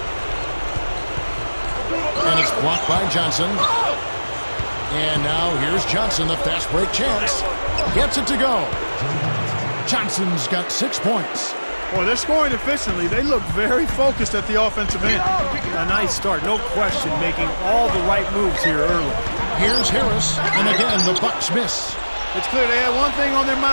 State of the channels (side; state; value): both; inverted; correlation -1.00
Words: And it's blocked by Johnson. And now here's Johnson, the fast break chance. Gets it to go. Johnson's got 6 points. Boy, they're scoring efficiently. They look very focused at the offensive end. A nice start, no question, making all the right moves here early. Here's Harris, and again, the Bucks miss. It's clear they had one thing on their